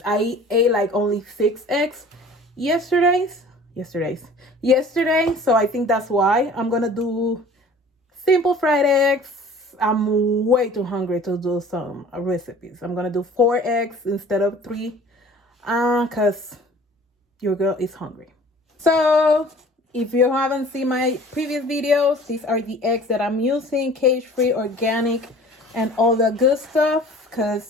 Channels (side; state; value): both; normal; correlation 0.47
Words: I ate like only 6 eggs yesterday. So I think that's why. I'm gonna do simple fried eggs. I'm way too hungry to do some recipes. I'm gonna do 4 eggs instead of 3, because your girl is hungry. So if you haven't seen my previous videos, these are the eggs that I'm using, cage-free, organic, and all the good stuff,